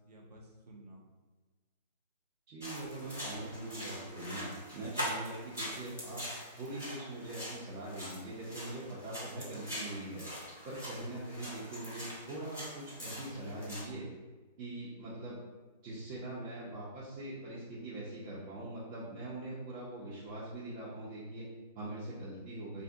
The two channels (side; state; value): both; inverted; correlation -0.36